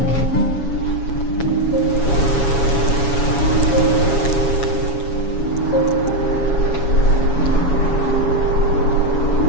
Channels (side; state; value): right; late; 7.1 ms